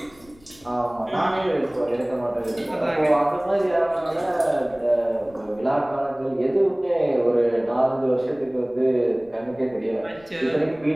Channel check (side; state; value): left; noise; rumble, 27 dB below the sound